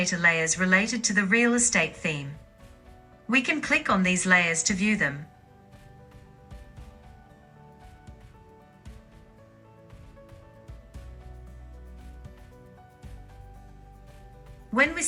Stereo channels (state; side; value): identical; both; correlation 1.00